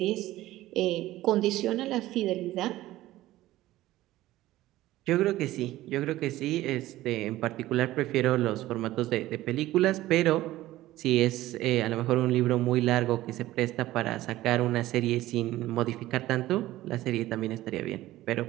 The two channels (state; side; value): quieter; left; 15.9 dB